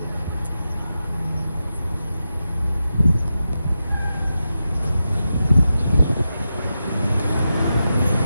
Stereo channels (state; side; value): inverted; both; correlation -0.90